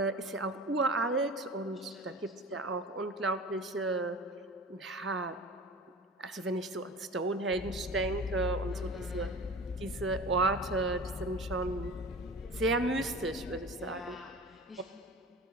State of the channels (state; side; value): normal; both; correlation 0.36